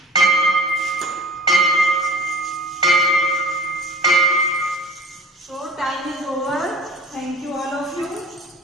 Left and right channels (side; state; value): both; normal; correlation 0.41